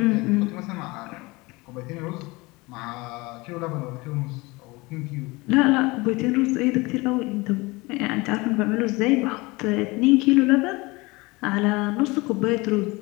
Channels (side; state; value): right; quieter; 23.6 dB